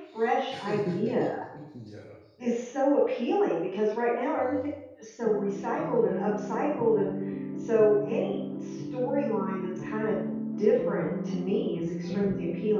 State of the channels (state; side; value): identical; both; correlation 1.00